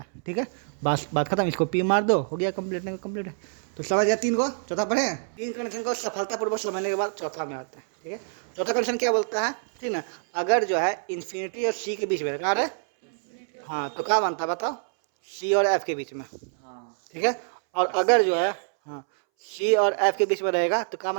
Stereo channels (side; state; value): left; silent; 61 dB below the other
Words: है, ठीक है। बस बात खत्म, इसको पी मार दो, हो गया कंप्लीट, नहीं कंप्लीट है। तो समझ गया तीन को, चौथा पढ़े हैं। तीन कंडीशन को सफलतापूर्वक समझने के बाद चौथा में आते हैं, ठीक है। चौथा कंडीशन क्या बोलता है, ठीक ना, अगर जो है इन्फिनिटी और सी के बीच में, कहाँ है, हाँ, तो क्या बनता है बताओ, सी और एफ के बीच में, ठीक है। और अगर जो है हाँ सी और एफ के बीच में रहेगा तो क्या